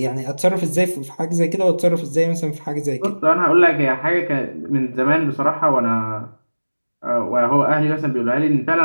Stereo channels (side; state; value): both; inverted; correlation -1.00